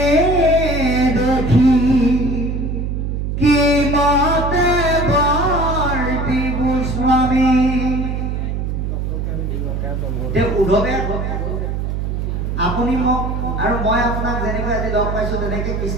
দেখি কি মতে বৰ্তি গোস্বামী উদ্ধৱে আপুনি মোক আৰু মই আপোনাক যেনেকৈ আজি লগ পাইছো তেনেকৈ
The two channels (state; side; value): noise; right; hum, 2 dB below the sound